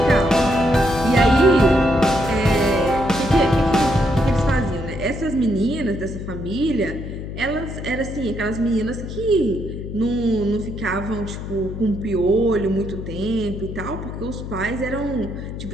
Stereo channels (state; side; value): noise; left; hum, 8 dB below the sound